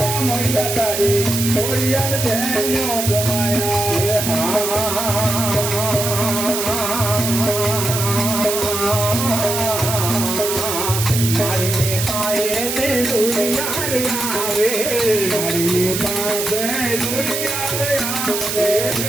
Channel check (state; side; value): noise; right; hiss, 2 dB below the sound